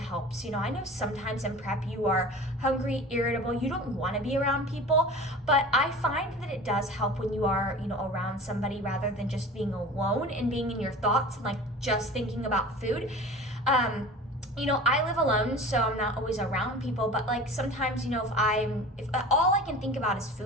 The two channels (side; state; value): both; normal; correlation 0.38